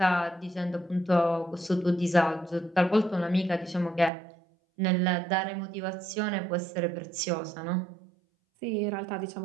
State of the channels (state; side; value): drops out; left; at 4.1 s